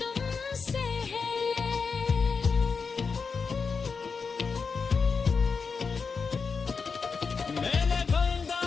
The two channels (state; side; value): quieter; right; 5.2 dB